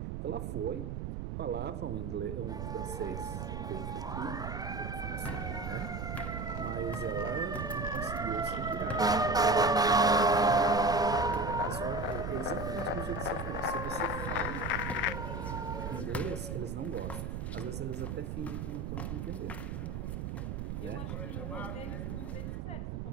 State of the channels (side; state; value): right; noise; rumble, 4 dB below the sound